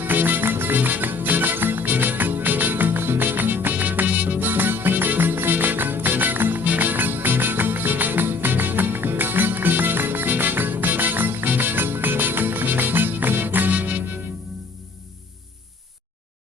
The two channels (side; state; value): right; quieter; 4.2 dB